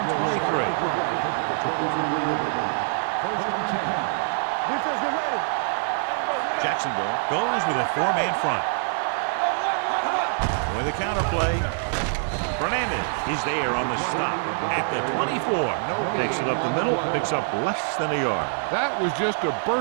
23. First and 10. Defense, get ready. Jacksonville goes with a 4-man front. With a counterplay. Fernandez is there on the stop at the 24. Takes it up the middle, picks up less than a yard. That was just a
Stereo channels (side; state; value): left; silent; digital silence